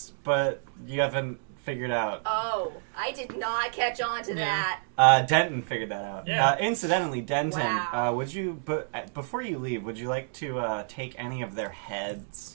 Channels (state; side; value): silent; left; digital silence